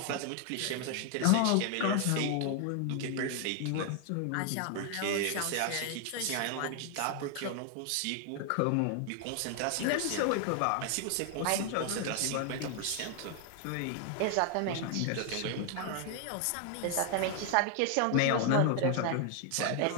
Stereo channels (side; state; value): both; different; correlation 0.00